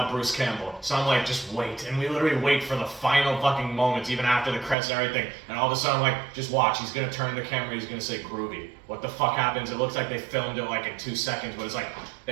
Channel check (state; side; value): drops out; left; at 4.8 s